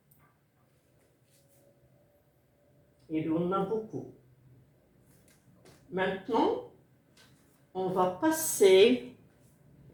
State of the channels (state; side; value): identical; both; correlation 1.00